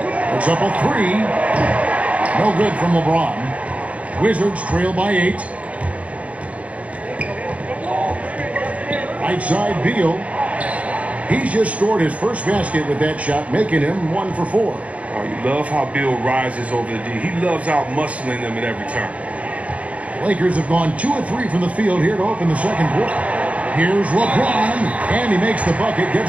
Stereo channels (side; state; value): left; late; 0.067 ms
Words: It's up a 3. No good from LeBron. Wizards trail by 8. Right side Beal. He's just scored his first basket with that shot, making him 1 for 4. Oh, you love how Beal rises over the D. He loves out-muscling them at every turn. Lakers have gone 2 of 3 from the field here to open the second quarter. Here's LeBron, and he makes the bucket,